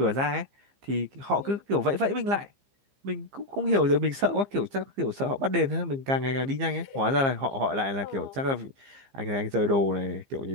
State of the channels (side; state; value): left; late; 15 ms